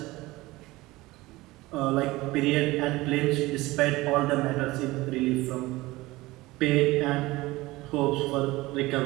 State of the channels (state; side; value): quieter; left; 19.9 dB